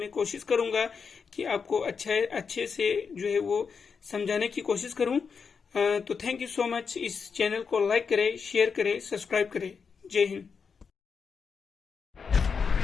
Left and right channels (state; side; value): quieter; right; 5.8 dB